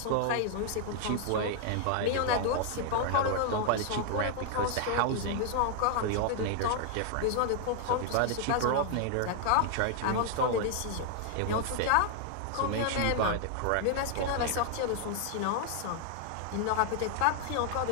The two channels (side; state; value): both; different; correlation 0.00